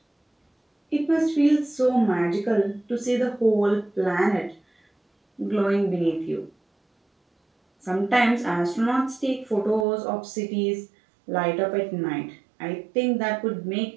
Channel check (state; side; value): drops out; left; at 9.9 s